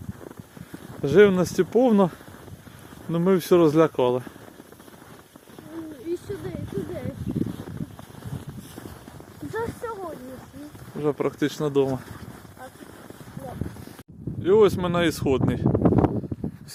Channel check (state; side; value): identical; both; correlation 1.00